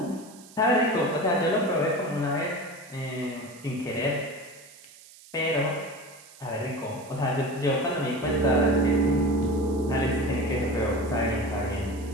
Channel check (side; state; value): right; noise; hiss, 21 dB below the sound